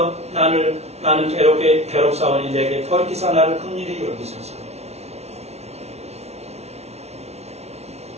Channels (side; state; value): left; late; 0.31 ms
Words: 나는 괴롭사오니 내게 돌이키사 나를 긍휼히 여기소서.